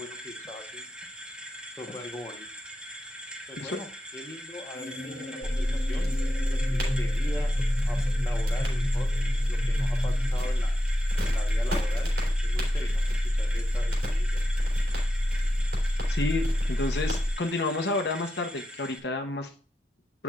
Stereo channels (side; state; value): both; normal; correlation 0.87